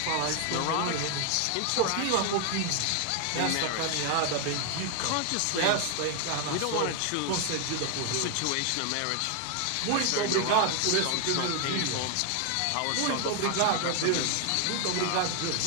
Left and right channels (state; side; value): different; both; correlation 0.00